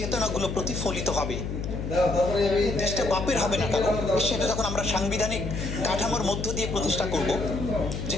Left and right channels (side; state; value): left; noise; hum, 4 dB below the sound